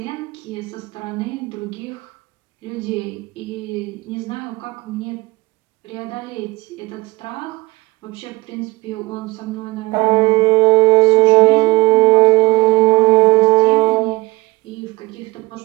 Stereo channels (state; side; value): quieter; left; 22.4 dB